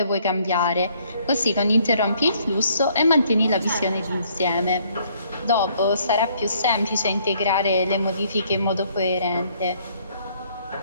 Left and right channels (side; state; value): both; inverted; correlation -0.65